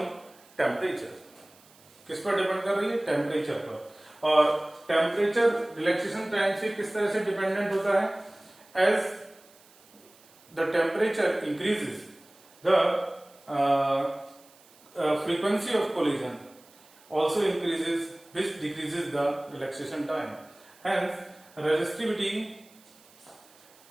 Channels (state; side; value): noise; right; hiss, 27 dB below the sound